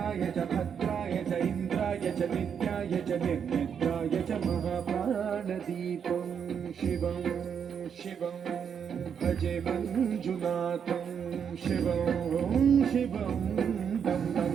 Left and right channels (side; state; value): left; quieter; 7.5 dB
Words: च भद्राय च इन्द्राय च नित्याय च निर्निद्राय च महाप्राणदीपं शिवं शिवं भजे मञ्जुनाथं शिवं शिवं दं दं